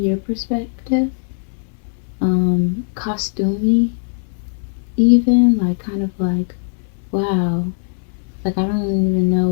perspective, costumey even, like kind of like, wow, like I don't even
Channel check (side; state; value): right; silent; 61 dB below the other